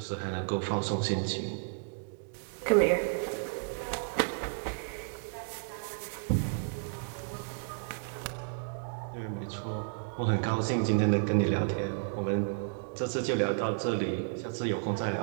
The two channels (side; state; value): left; silent; digital silence